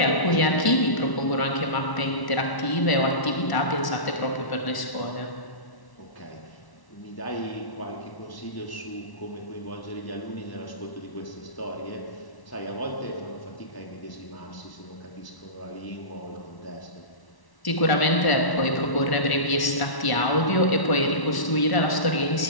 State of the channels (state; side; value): late; right; 1.1 ms